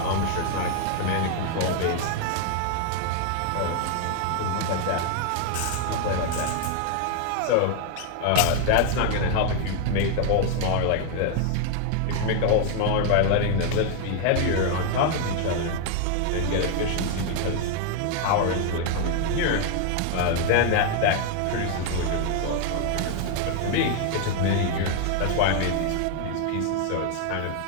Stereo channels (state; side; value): different; both; correlation 0.00